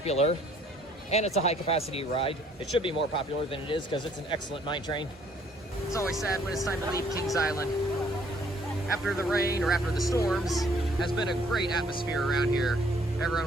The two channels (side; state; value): both; normal; correlation 0.62